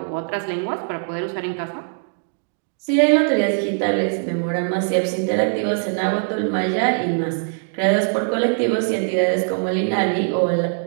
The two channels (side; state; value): left; silent; digital silence